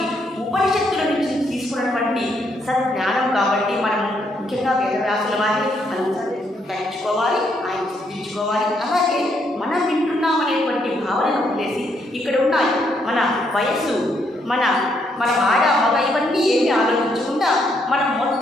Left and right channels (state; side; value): normal; both; correlation 0.74